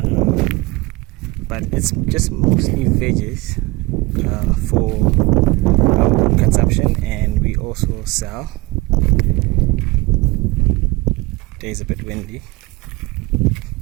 but it's just mostly veggies for our own consumption, and we also sell. Today's a bit windy.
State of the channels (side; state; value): left; quieter; 22.6 dB